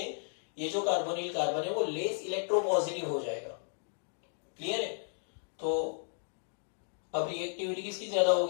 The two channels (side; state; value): right; silent; digital silence